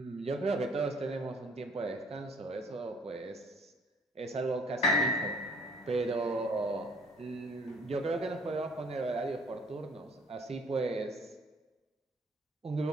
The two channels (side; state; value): both; normal; correlation 0.56